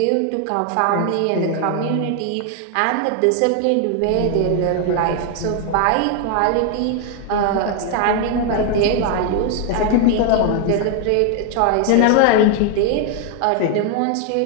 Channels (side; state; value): both; different; correlation 0.00